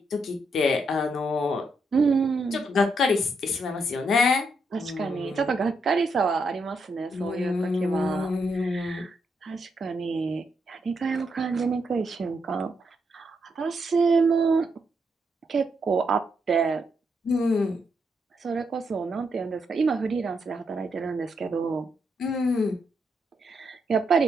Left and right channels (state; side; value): normal; both; correlation 0.80